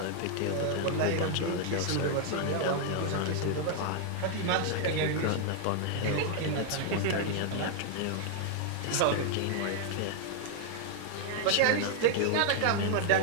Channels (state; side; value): different; both; correlation 0.00